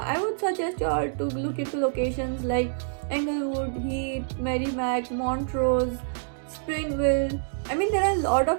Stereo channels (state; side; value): silent; left; digital silence